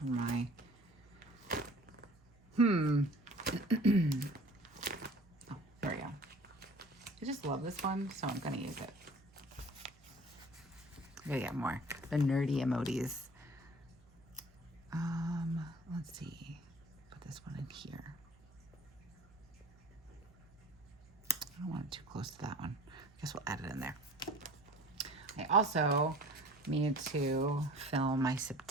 my, oh, there we go. I just love this one, so I'm going to use it. I'm going to get more, the nerdy emojis. Let's see, put this one in here. I don't want it too close to that one. I guess we'll add it in there. I also need to film my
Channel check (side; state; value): right; noise; hum, 28 dB below the sound